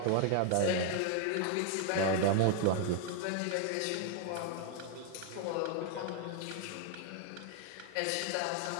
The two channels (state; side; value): different; both; correlation 0.00